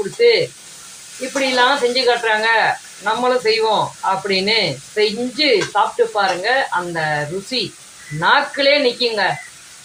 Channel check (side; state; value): both; identical; correlation 1.00